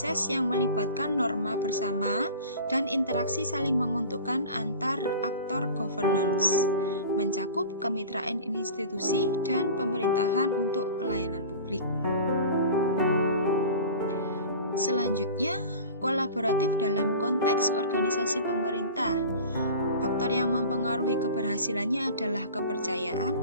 yang melibatkan norma bersama dan interaksi saling menguntungkan antar aktor governance, mencakup kemitraan institusi dan pemerintahan untuk pelayanan publik. Selanjutnya, kolaboratif dalam konteks organisasi pemerintah. Faktor yang mempengaruhi keberhasilannya adalah kepercayaan,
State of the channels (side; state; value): both; inverted; correlation -0.37